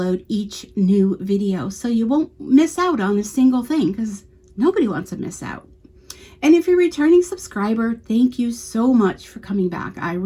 each new video, so you won't miss out on a single thing, because nobody wants to miss out. And if you're a returning subscriber, thank you so much for coming back. I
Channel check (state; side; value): identical; both; correlation 1.00